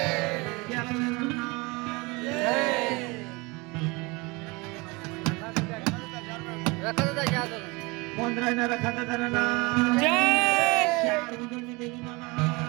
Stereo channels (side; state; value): left; quieter; 25.8 dB